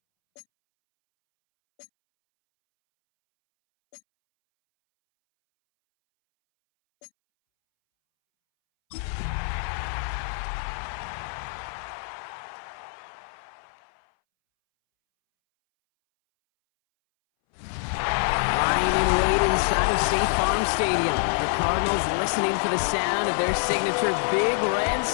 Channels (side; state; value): right; silent; 61 dB below the other